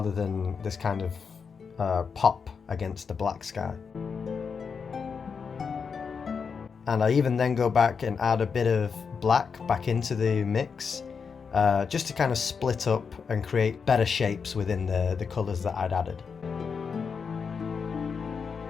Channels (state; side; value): quieter; right; 5.8 dB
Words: than this kind of pop against the black sky. And I even then go back and add a bit of black back into the mix, just to kind of split up and create better shapes within the colours that I'd added.